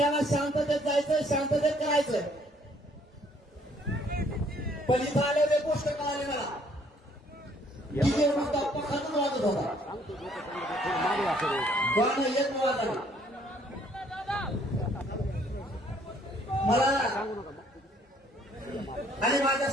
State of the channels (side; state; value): both; normal; correlation 0.63